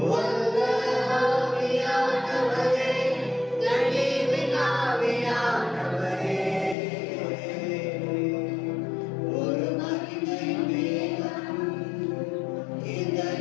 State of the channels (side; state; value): right; drops out; at 6.8 s